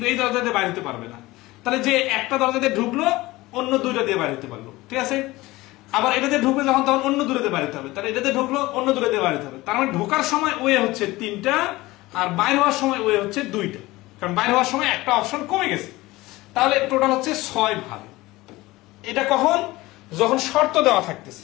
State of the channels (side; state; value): right; quieter; 19.5 dB